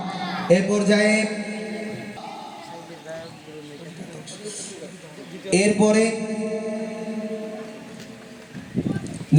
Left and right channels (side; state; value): both; identical; correlation 1.00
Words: এ পর্যায়ে এরপরে